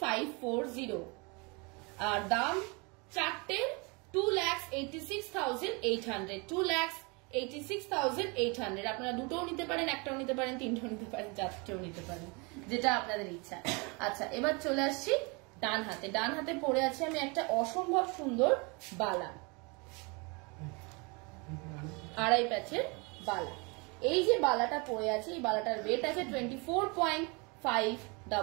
আর দাম 4টের 2,86,800, 2,86,800। আপনারা দুটোও নিতে পারেন, একটাও নিতে পারেন, তিনটাও নিতে পারেন, চারটেও নিতে পারেন, যেটা আপনাদের ইচ্ছা। আচ্ছা, এবার চলে আসছি ডান হাতে, ডান হাতে পরে আছে আমি একটা অসম্ভব সুন্দর বালা, আড়াই প্যাচের বালা। এই যে বালাটা পরে আছে, এই বালাটার ওয়েট আছে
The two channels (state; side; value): quieter; left; 29.9 dB